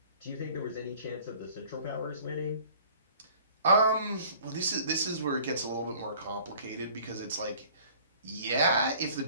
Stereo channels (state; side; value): inverted; both; correlation -0.51